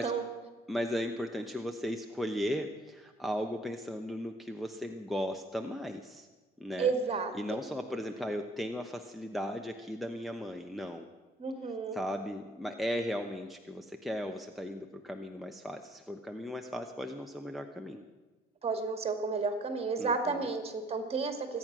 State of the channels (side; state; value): both; normal; correlation 0.61